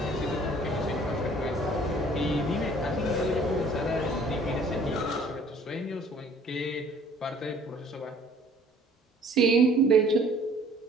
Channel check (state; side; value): normal; both; correlation 0.55